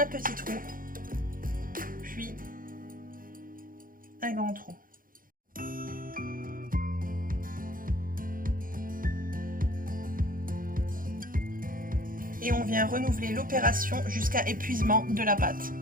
petit trou, puis un grand trou. Et on vient renouveler l'opération jusqu'à épuisement de la pâte.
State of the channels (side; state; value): left; late; 0.40 ms